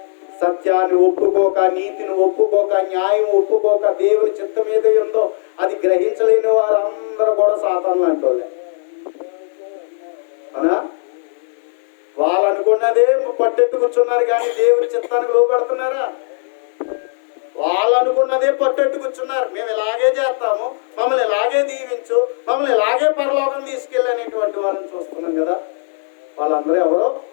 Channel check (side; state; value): right; silent; 66 dB below the other